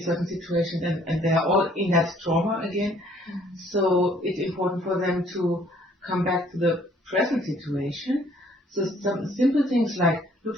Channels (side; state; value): both; normal; correlation 0.61